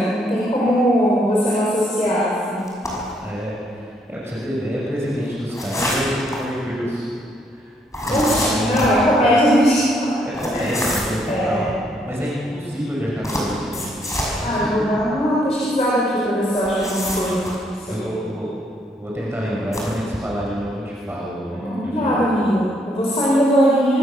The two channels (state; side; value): normal; both; correlation 0.71